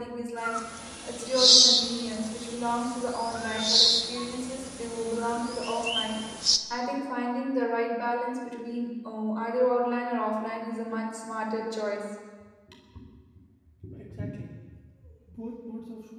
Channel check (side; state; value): both; identical; correlation 1.00